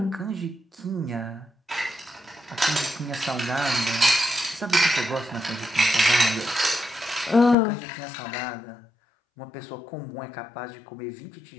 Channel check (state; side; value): drops out; right; at 7.6 s